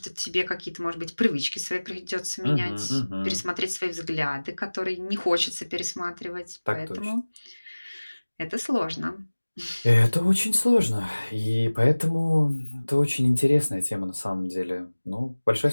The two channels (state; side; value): inverted; both; correlation -1.00